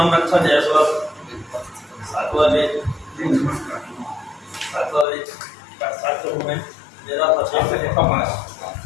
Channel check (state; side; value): drops out; right; at 5.1 s